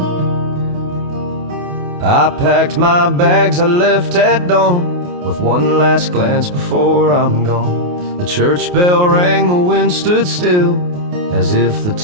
I packed my bags, I left at dawn, with one last glance before I'm gone. The church bell rang, the wind stood still, as if the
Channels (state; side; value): late; left; 28 ms